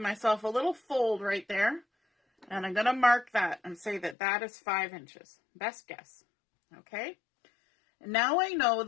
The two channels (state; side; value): drops out; right; at 4.2 s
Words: myself a little fold right there, and I'm going to mark that and say that that is 5 inches. Best guess. Okay. And now I know